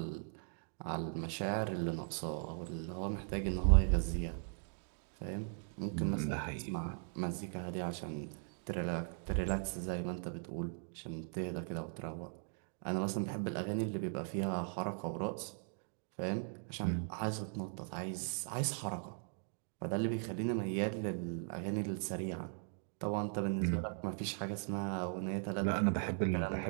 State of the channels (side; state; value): left; silent; 52 dB below the other